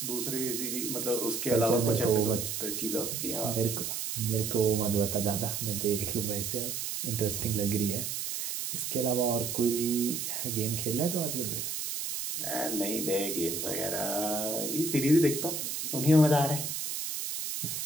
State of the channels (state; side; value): noise; right; hiss, 3 dB below the sound